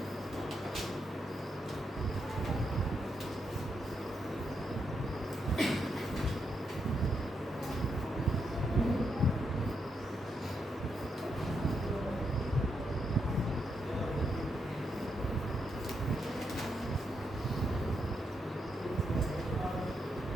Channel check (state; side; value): normal; both; correlation 0.81